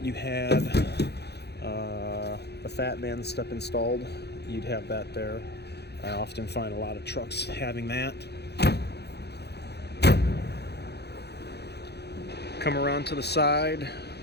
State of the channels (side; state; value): right; late; 0.48 ms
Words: you had the Fat Man step installed, you'd have that there. I often find a lot of trucks having that. Come around to the side.